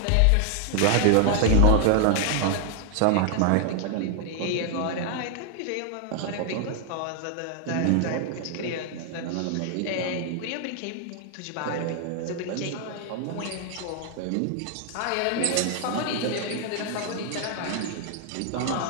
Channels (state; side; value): different; both; correlation 0.00